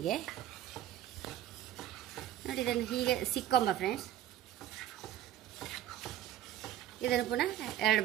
ನೋಡಿ ಇದನ್ನು ಹೀಗೆ ಸಿಕ್ಕೊಂಬ ಫ್ರೆಂಡ್ಸ್. ಇದನ್ನು ಪುನಃ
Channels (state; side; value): quieter; left; 12.1 dB